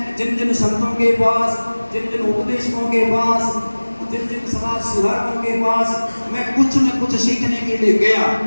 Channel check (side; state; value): both; inverted; correlation -1.00